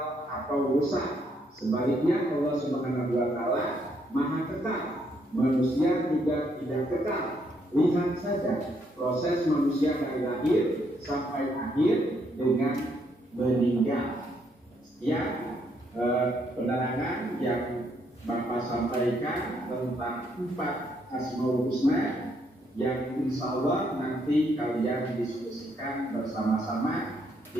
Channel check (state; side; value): normal; both; correlation 0.73